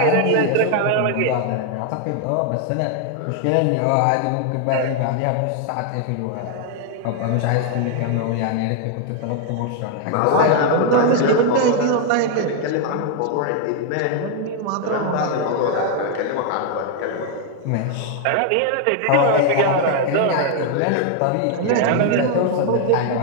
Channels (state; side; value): different; both; correlation 0.00